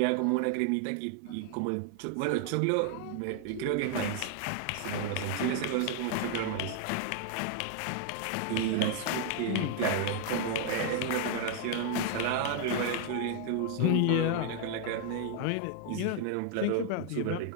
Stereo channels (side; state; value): both; different; correlation 0.00